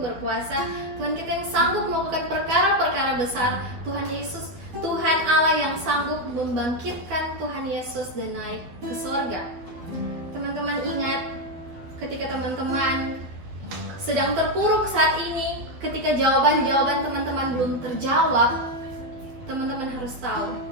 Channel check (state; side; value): late; left; 12 ms